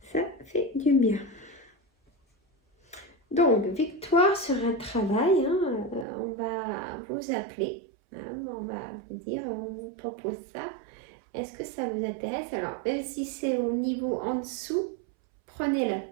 Ça fait du bien. Donc, victoire sur un travail. Hein, on va vous appeler. On va vous dire, on vous propose ça. Est-ce que ça vous intéresse? Alors, même si c'est au niveau en dessous, prenez-le.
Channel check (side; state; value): left; drops out; at 6.1 s